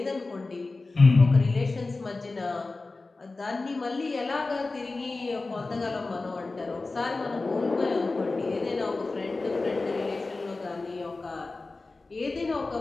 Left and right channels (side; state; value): right; quieter; 3.5 dB